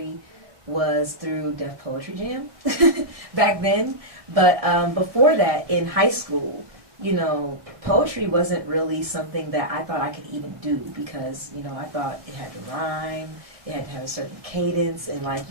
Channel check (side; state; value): left; late; 1.7 ms